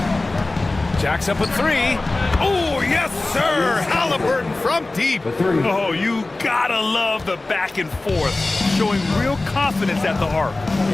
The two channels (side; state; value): right; quieter; 3.1 dB